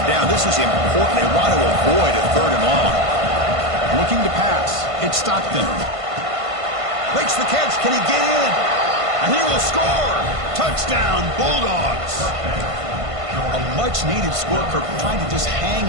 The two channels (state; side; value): late; left; 1.5 ms